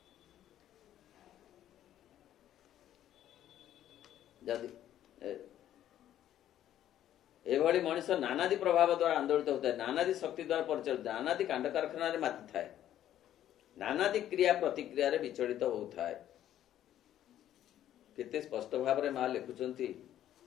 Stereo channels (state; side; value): quieter; right; 11.7 dB